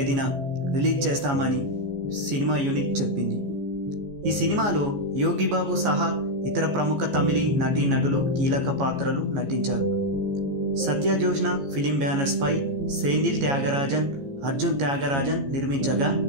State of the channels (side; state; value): left; late; 15 ms